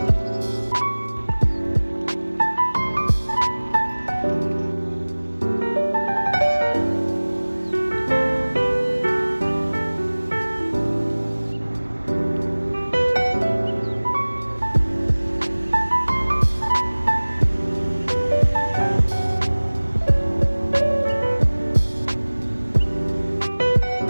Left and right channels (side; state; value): both; inverted; correlation -1.00